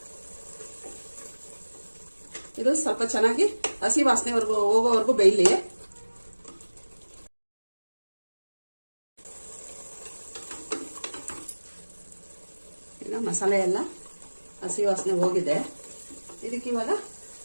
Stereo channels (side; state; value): both; inverted; correlation -1.00